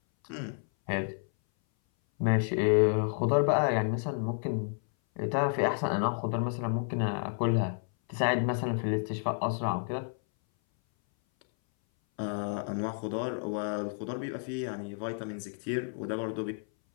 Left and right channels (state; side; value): silent; right; 57 dB below the other